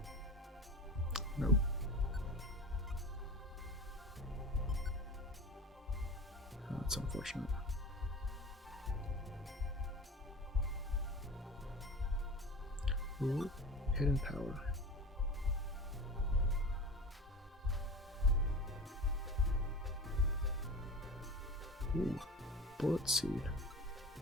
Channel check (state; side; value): normal; both; correlation 0.33